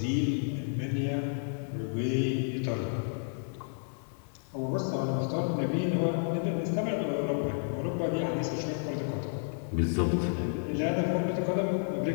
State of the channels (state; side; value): silent; right; digital silence